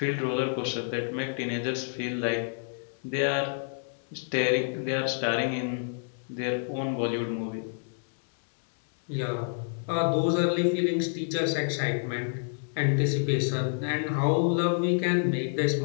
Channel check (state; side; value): silent; right; digital silence